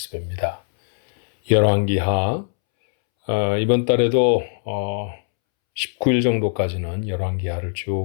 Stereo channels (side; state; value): right; silent; 65 dB below the other